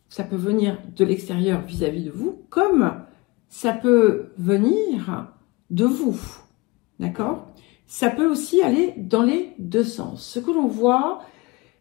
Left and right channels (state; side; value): quieter; right; 24.4 dB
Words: venir de l'extérieur vis-à-vis de vous, comme ça peut venir de vous, d'accord? Ça peut aussi aller dans les deux sens. Ce que l'on voit,